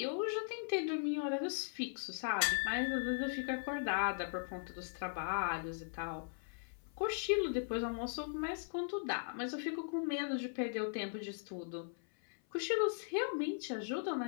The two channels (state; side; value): silent; right; 52 dB below the other